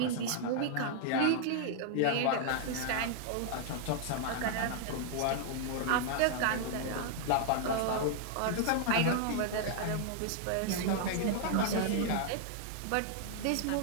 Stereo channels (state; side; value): different; both; correlation -0.01